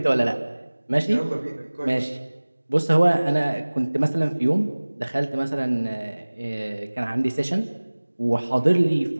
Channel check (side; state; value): both; inverted; correlation -1.00